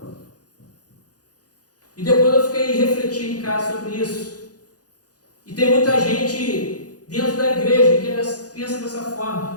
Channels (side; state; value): right; late; 0.68 ms